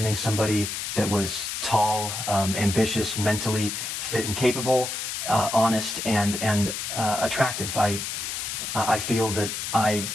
somebody that was tall, ambitious, mentally fit and capable, honest and attractive. I feel that I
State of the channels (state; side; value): noise; left; hiss, 4 dB below the sound